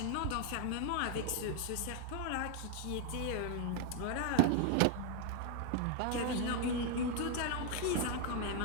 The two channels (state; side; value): different; both; correlation 0.01